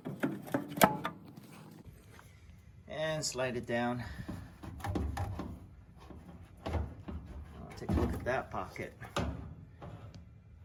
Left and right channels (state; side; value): identical; both; correlation 1.00